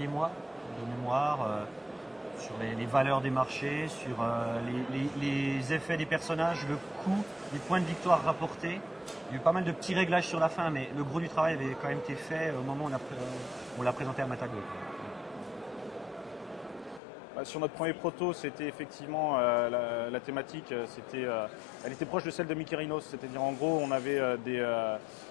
mois, de mémoire, sur les valeurs des marchés, sur les effets des personnages, le coût, les points de victoire rapportés. Il y a eu pas mal de petits réglages sur la fin, mais le gros du travail avait quand même été fait au moment où on l'a présenté à Matago. Sur notre premier proto, c'était effectivement la thématique, elle était proche de celle de Mykérinos, c'est-à-dire en gros on avait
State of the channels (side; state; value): right; drops out; at 17.0 s